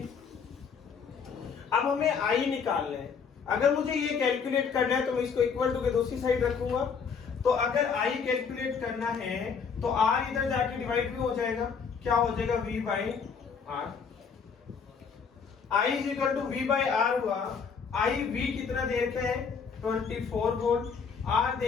अब हमें आई निकालना है। अगर मुझे ये कैलकुलेट करना है तो मैं इसको इक्वल टू के दूसरी साइड रखूंगा। तो अगर आई कैलकुलेट करना है तो आर इधर जाके डिवाइड भी हो जाएगा, क्या हो जाएगा V by R. I is equal to V by R हुआ। आई V कितना दे रखा है 24 वोल्ट, आर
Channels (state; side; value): quieter; right; 6.0 dB